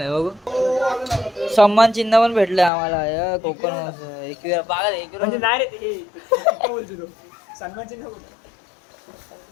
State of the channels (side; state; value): right; drops out; at 2.7 s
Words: बघू सन्मान चिन्ह पण भेटलंय आम्हाला. कोकण म्हणजे नाही रे ते बोलतो सन्मान चिन्ह.